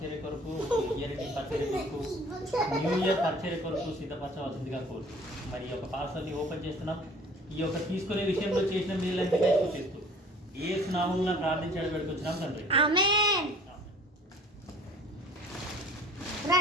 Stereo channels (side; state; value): both; normal; correlation 0.50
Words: కొరకు, ఇయర్ పరిచర్య కొరకు, న్యూ ఇయర్ పరిచర్య కొరకు సిద్ధపరచవలసిందిగా కోరుతూ, మరి ఈ యొక్క పార్సల్ని ఓపెన్ చేస్తున్నాం. ఈ యొక్క తీసుకునే విషయంలో చేసిన మీరంతా స్తుతిస్తూ యేసు నామమున ప్రార్థించి పెడుతున్నాం తండ్రి. ఆమేన్.